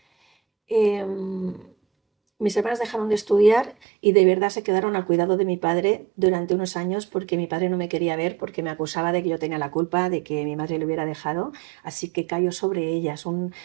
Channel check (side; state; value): left; drops out; at 3.8 s